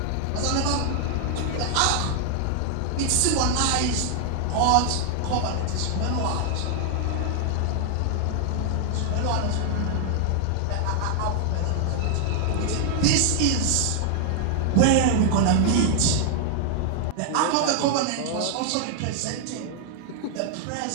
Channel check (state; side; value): different; both; correlation 0.00